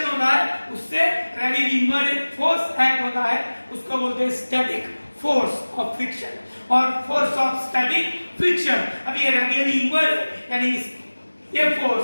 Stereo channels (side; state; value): both; inverted; correlation -1.00